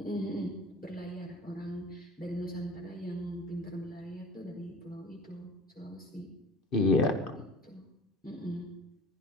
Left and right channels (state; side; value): normal; both; correlation 0.40